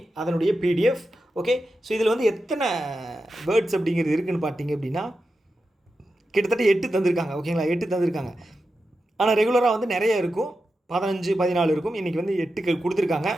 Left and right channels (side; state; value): both; normal; correlation 0.90